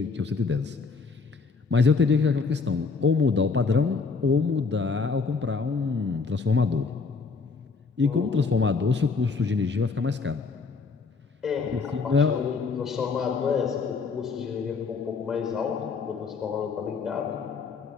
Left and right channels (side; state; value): right; quieter; 4.7 dB